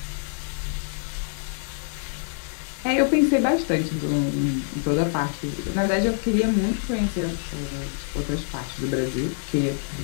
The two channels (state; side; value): silent; right; 61 dB below the other